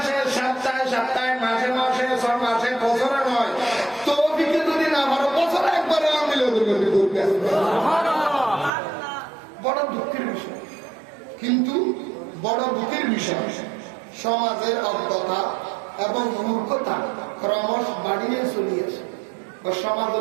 সপ্তাহে সপ্তাহে মাসে মাসে 6 মাসে বছরে নয় বড় দুঃখের বিষয়, কিন্তু বড় দুঃখের বিষয় সমাজের অজ্ঞতা এবং মূর্খতা ক্রমশ বাড়িয়ে চলিয়েছে।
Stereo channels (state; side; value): drops out; left; at 8.7 s